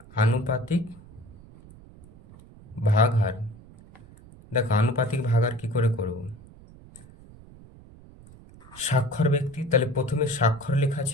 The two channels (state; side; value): noise; right; rumble, 21 dB below the sound